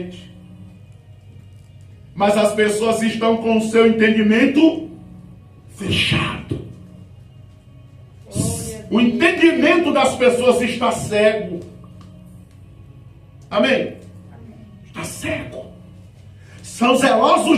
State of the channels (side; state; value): both; identical; correlation 1.00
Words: Mas as pessoas estão com o seu entendimento fechado. O entendimento das pessoas está cego. Amém? Está cego. São